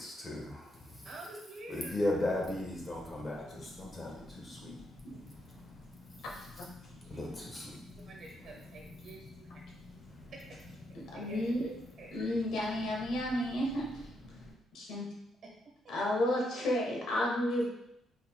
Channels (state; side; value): normal; both; correlation 0.78